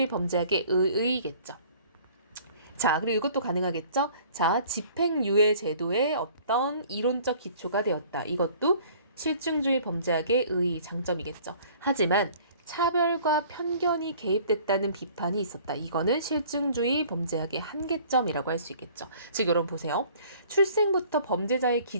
범죄학의 의의겠죠. 자, 그리고 이것도 가능하겠죠? 자, 집행유예 제도의 어떤 이론적 기초가 되었다. 이것도 실증주의 범죄학의 의의 장점이겠죠. 하지만 차별과 편견이 개입됐다는 비판이 있었다. 이거는 실증주의 범죄학의 한계점이라고 할 수 있겠죠. 즉 여러분 보세요. 출생부터 범죄자의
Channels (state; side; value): inverted; both; correlation -0.52